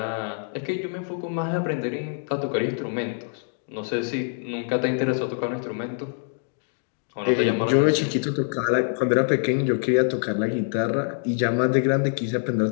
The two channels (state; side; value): silent; right; 62 dB below the other